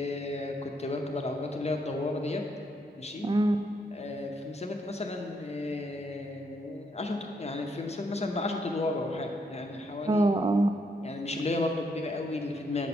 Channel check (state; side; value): normal; both; correlation 0.75